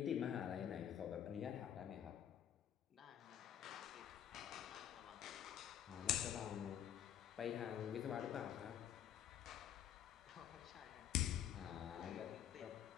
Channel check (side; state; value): right; quieter; 10.1 dB